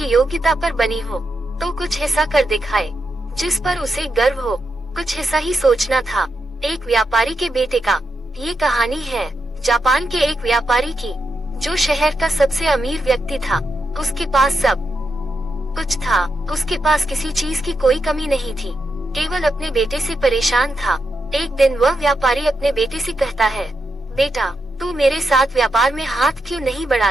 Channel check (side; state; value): both; normal; correlation 0.85